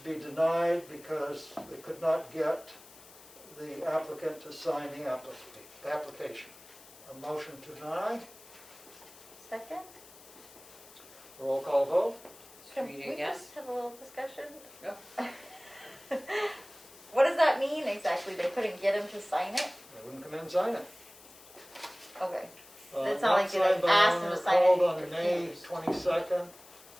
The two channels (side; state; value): left; noise; hiss, 21 dB below the sound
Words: be denied because they could not get the applicant to sign the application. A motion to deny. Second? Roll call vote. Can Streeter, we yes. just have a little discussion? Yep. What does that mean exactly? They couldn't get him to sign it? They wouldn't come in and sign it. Okay. It's not like they signed by asked him owner, to sign called it, on he May refused. 22nd,